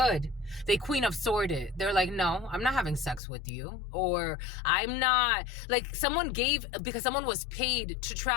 They Queen of Sword it. They're like, no, I'm not having sex with you. Or I'm not, like someone gave, because someone was paid to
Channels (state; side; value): drops out; right; at 3.2 s